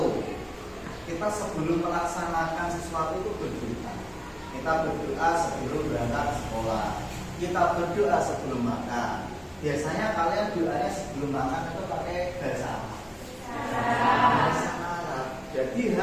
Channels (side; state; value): both; identical; correlation 1.00